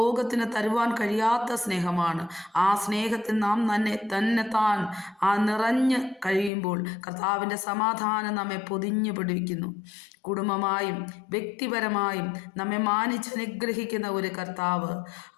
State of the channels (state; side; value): drops out; right; at 6.5 s